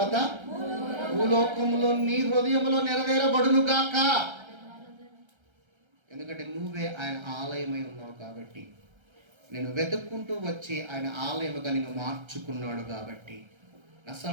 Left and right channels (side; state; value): left; late; 1.3 ms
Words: భూలోకములో నీ హృదయంలో నెరవేరబడును గాక. ఎందుకంటే నువ్వే ఆయన ఆలయమై ఉన్నావు కాబట్టి, నేను వెతుక్కుంటూ వచ్చి ఆయన ఆలయముగా నిన్ను మార్చుకున్నాడు కాబట్టి. నా